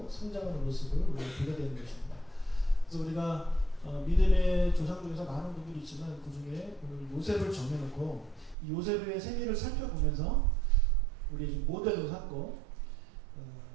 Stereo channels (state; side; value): drops out; left; at 8.6 s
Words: 성장하는 모습을 우리가 보게 되는 것입니다. 그래서 우리가 믿음의 조상 중에서 많은 분들이 있지만 그 중에 오늘 요셉을 정해놓고 이 요셉의 생애를 살펴보면서 우리 모델로 삼고